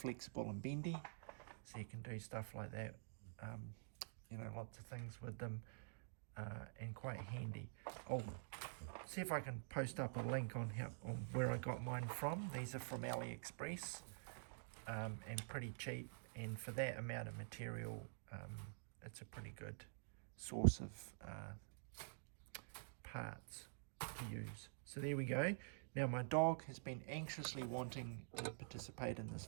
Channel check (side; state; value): left; silent; digital silence